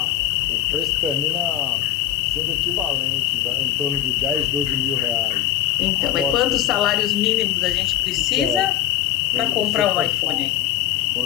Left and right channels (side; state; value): right; quieter; 12.0 dB